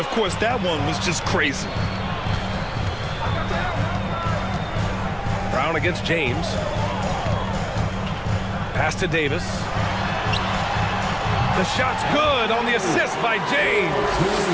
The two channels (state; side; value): identical; both; correlation 1.00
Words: course that one was just crazy. Brown against James. Pass to Davis. The shot's good on the assist by